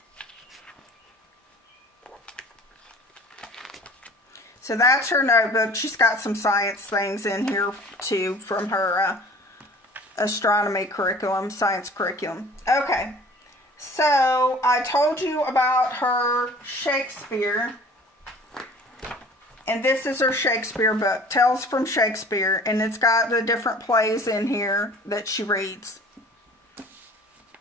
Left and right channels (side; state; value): both; normal; correlation 0.47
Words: So that's her notebook. She's got some science things in here too from her astronomy curriculum, science curriculum. Okay, so I told you about her Shakespeare. And this is her Shakespeare book, Tales from Shakespeare, and it's got the different plays in here that she reads.